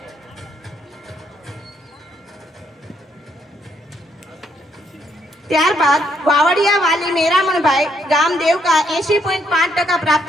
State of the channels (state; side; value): normal; both; correlation 0.73